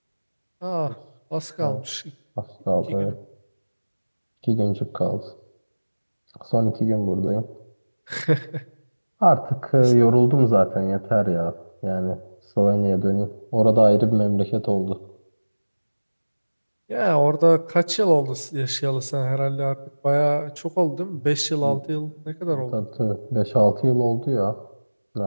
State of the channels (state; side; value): inverted; both; correlation -1.00